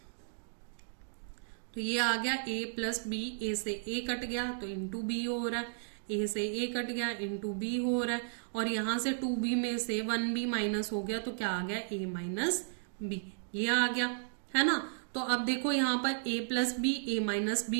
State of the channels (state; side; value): silent; left; digital silence